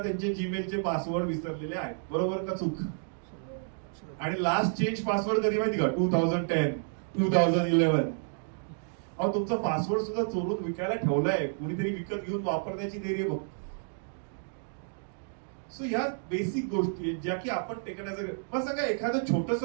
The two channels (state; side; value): silent; left; digital silence